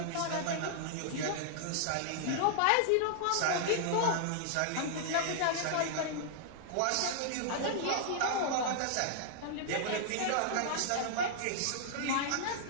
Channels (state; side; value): different; both; correlation -0.01